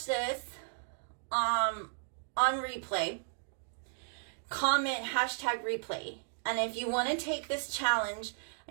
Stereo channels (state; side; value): silent; left; digital silence